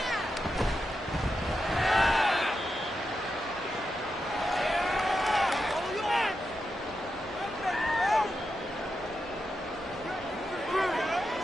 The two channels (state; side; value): normal; both; correlation 0.87